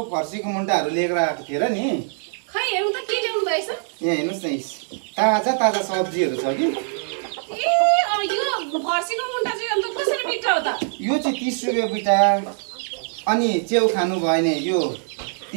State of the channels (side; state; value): left; silent; 59 dB below the other